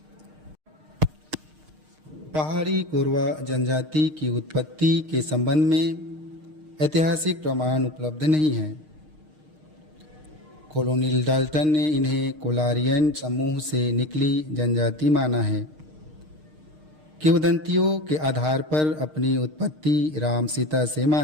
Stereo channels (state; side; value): late; left; 6.5 ms